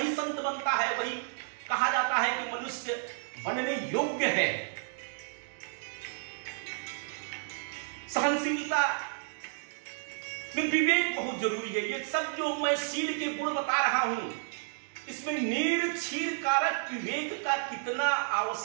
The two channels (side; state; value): left; silent; digital silence